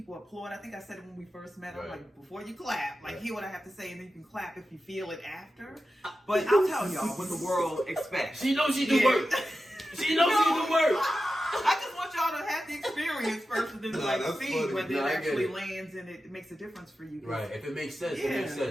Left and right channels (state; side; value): normal; both; correlation 0.92